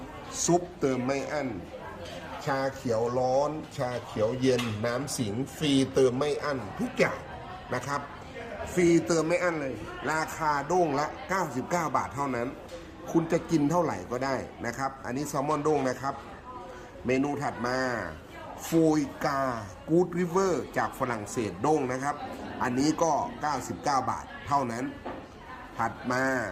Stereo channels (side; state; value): both; identical; correlation 1.00